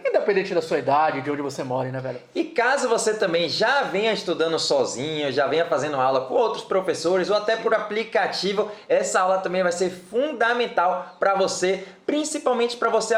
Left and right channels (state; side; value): identical; both; correlation 1.00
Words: independente da sua idade, de onde você mora, né, velho? E caso você também já venha estudando sozinho, já venha fazendo aula com outros professores ou até por aplicativo, essa aula também vai ser fundamental para você, principalmente para você